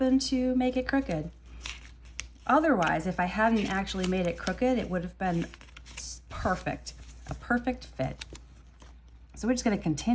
to make it crooked. Otherwise, if I hadn't actually made it crooked, it would have been perfect, a perfect fit. So we're just gonna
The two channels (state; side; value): identical; both; correlation 1.00